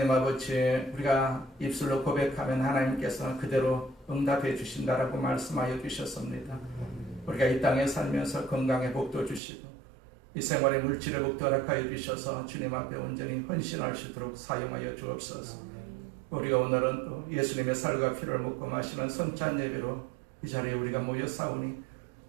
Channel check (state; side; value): drops out; left; at 9.4 s